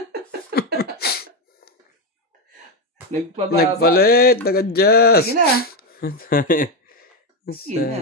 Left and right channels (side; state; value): both; normal; correlation 0.09